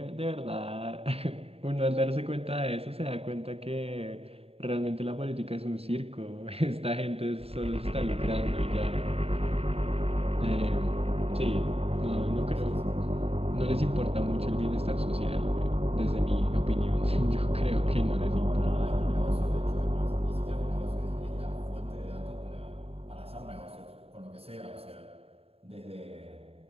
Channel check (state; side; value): late; left; 0.29 ms